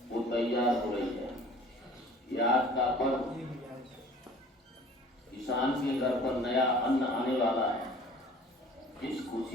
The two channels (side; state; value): both; normal; correlation 0.48